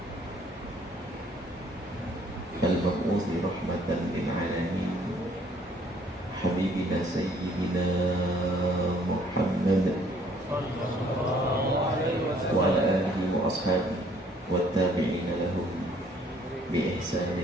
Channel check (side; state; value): both; normal; correlation 0.61